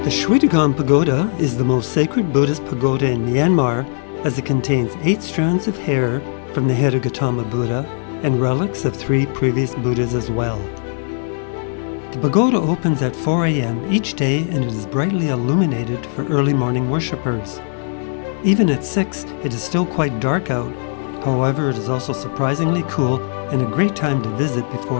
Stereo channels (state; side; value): silent; right; 61 dB below the other